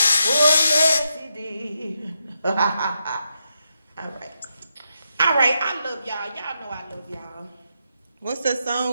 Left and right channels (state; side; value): inverted; both; correlation -0.83